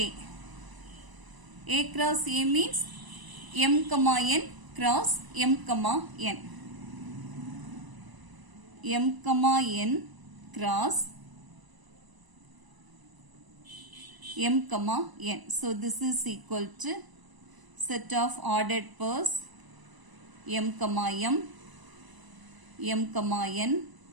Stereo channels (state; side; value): late; left; 1.0 ms